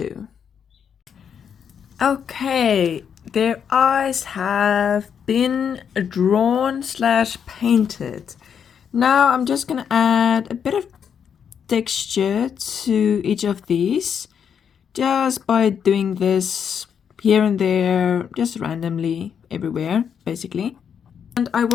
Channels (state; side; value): quieter; right; 7.6 dB